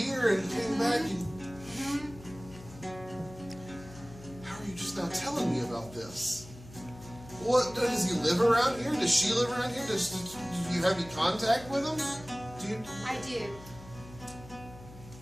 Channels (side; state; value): left; noise; hum, 18 dB below the sound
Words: and came back and... How are you just now telling me about this? What, does he live around here? Does she live around here? Do you have any contact with him? Do you... I do.